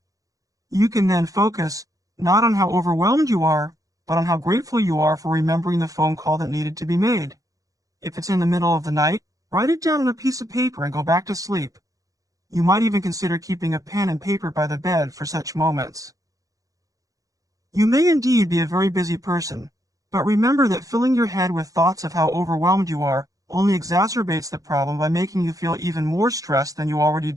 You can then focus not on how overwhelmed you are, but on how grateful you are for remembering the phone call that needed to be made. If it's in the middle of the night, write it down on a piece of paper and go back to sleep. You might even consider keeping a pen and paper by the bed for such moments. You may indeed be a very busy person, but remember that filling your head with thoughts of how overwhelmed you are only exacerbates the problem by making you feel even more stressed than you already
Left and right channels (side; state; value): left; late; 0.17 ms